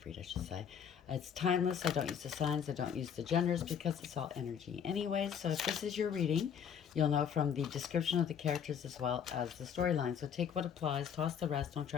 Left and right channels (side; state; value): right; quieter; 7.9 dB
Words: read I should say. It's timeless, I don't use the signs, I don't use the genders because it's all energy anyways. So if this is your reading, you'll know from the description of the characters as well as the storyline. So take what applies, toss the rest, don't